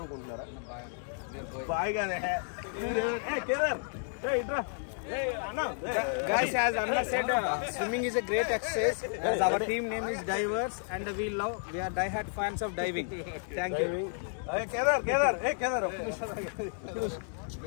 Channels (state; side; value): silent; right; 56 dB below the other